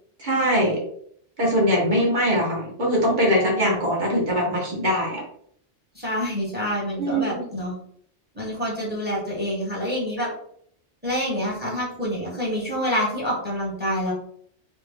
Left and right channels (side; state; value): both; normal; correlation -0.19